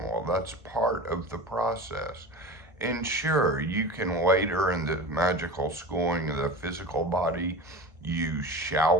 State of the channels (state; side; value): normal; both; correlation 0.32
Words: That's part of the process. And sure, you can later in the magical schooling of the physical body use